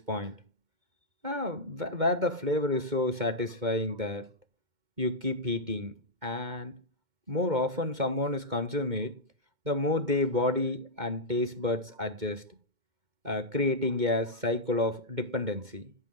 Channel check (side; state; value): left; late; 2.2 ms